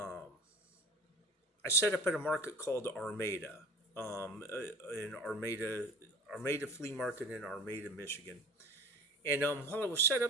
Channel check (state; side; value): normal; both; correlation 0.39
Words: set up at a market called Armada, in Armada Flea Market in Armada, Michigan. And while I was set